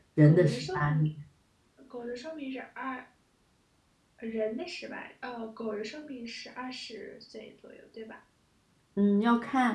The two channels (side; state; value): both; identical; correlation 1.00